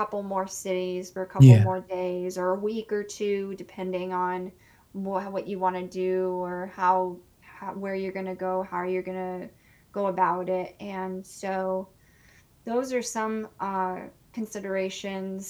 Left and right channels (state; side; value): identical; both; correlation 1.00